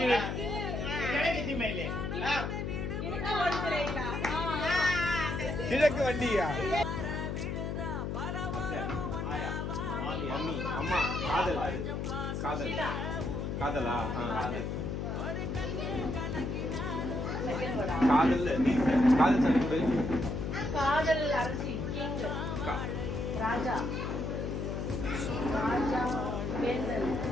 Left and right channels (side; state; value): left; noise; hum, 2 dB below the sound